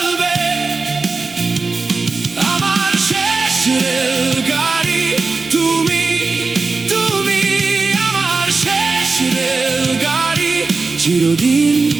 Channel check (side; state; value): left; quieter; 4.0 dB